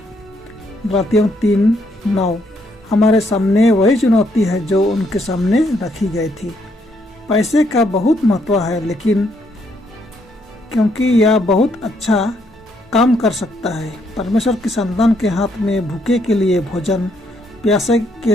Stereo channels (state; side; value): normal; both; correlation 0.73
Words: गलातियों 3:9। हमारे सामने वही चुनौती है जो उनके सामने रखी गई थी। पैसे का बहुत महत्व है, लेकिन क्योंकि यह बहुत अच्छा काम कर सकता है। परमेश्वर की संतान के हाथ में भूखे के लिए भोजन, प्यासे के